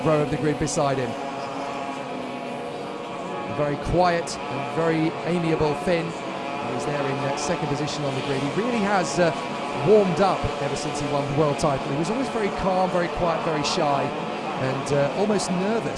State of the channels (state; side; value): identical; both; correlation 1.00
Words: row of the grid beside him. A very quiet and very amiable Finn. He's there in second position on the grid. He really has warmed up ever since he won the world title. He was always very calm, very quiet, very shy, and almost